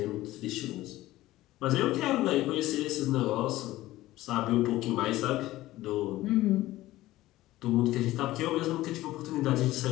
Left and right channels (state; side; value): quieter; right; 16.4 dB